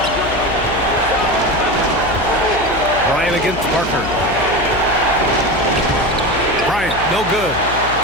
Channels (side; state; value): left; noise; hum, 12 dB below the sound